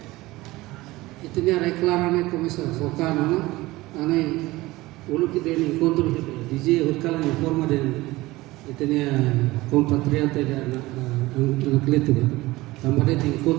itu ni reklarane komisar fokana, ane ulu kita ni kontrol DJ hutkalan informa dan itu ni compatriota dan anak letu. Tambah dia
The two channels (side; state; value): left; quieter; 19.4 dB